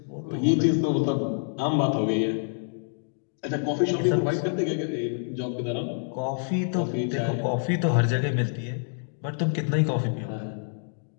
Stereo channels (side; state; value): right; silent; digital silence